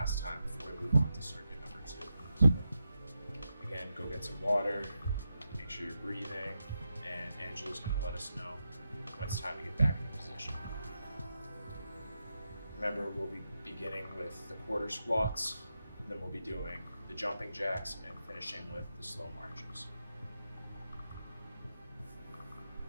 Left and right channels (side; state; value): both; inverted; correlation -0.88